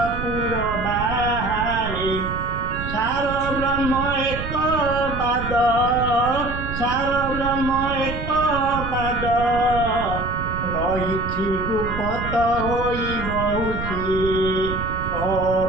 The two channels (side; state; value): right; noise; rumble, 7 dB below the sound